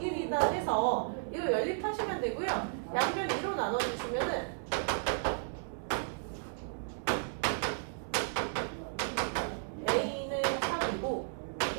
해서 이거 연립하시면 되고요. 양변 2로 나눠주시면은 a는 3이고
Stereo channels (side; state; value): left; silent; 55 dB below the other